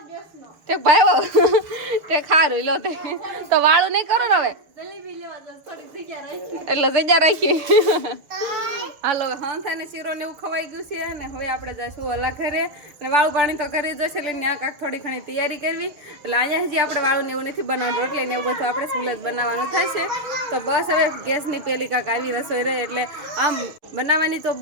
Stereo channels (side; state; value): left; late; 6.4 ms